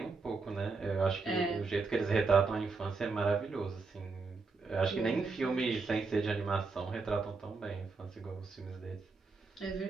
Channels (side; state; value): left; quieter; 4.2 dB